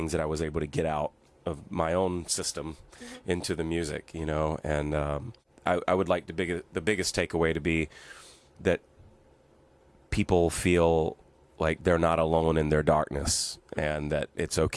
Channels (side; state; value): both; identical; correlation 1.00